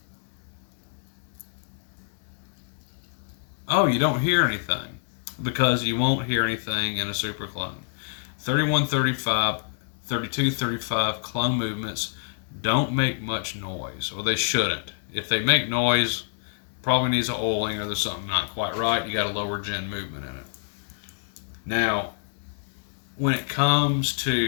Oh, you don't hear anything because you won't hear anything in a super clone. 3135, 3235 clone movements don't make much noise, or they shouldn't. If they make noise, probably needs an oiling or there's something not quite right. You got a lower gen movement in it. Now, when it comes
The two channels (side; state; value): right; silent; digital silence